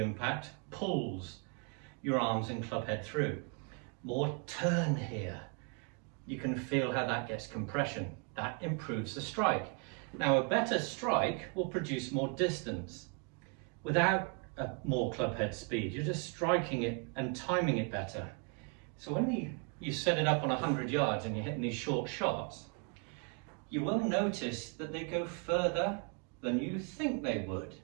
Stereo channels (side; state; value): left; quieter; 37.4 dB